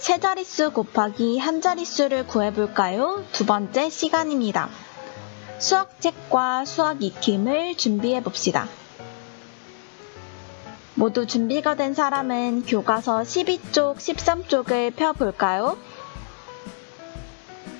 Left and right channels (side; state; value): right; silent; 62 dB below the other